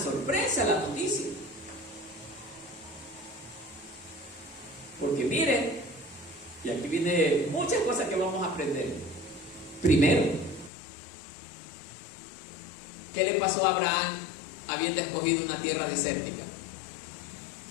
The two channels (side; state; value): right; drops out; at 10.7 s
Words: sorpresa la noticia. Porque miren, y aquí viene muchas cosas que vamos a aprender. Primero, ¿qué le pasó a Abraham habiendo escogido una tierra desértica?